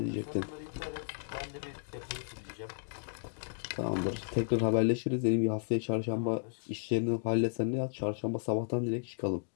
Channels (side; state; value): right; silent; digital silence